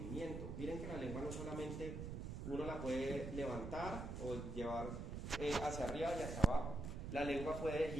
Miren que la lengua no solamente uno la puede levantar o llevar hacia arriba y hacia abajo. La lengua puede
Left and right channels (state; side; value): noise; right; rumble, 6 dB below the sound